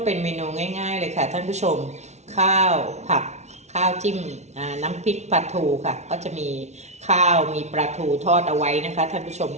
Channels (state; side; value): late; left; 0.32 ms